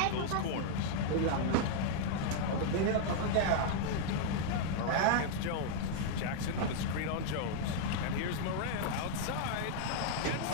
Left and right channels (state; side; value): different; both; correlation 0.00